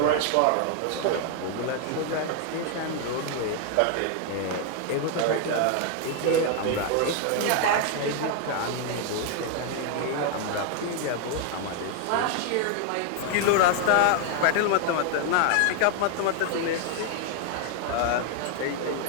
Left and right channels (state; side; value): different; both; correlation 0.00